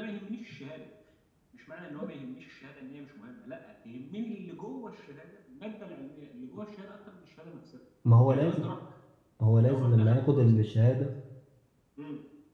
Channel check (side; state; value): both; identical; correlation 1.00